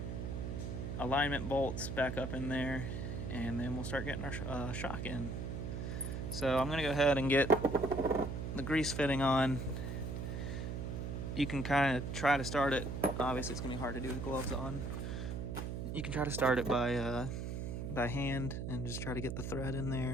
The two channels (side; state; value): right; noise; hum, 4 dB below the sound